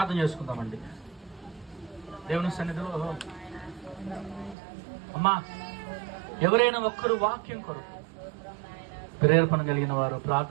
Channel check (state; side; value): drops out; left; at 4.5 s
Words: చేసుకుందామండి దేవుని సన్నిధిలో. అమ్మా, ఎవరైనా ఒక్కరు వాక్యం కొరకు ప్రేరేపణ కలిగిన వారు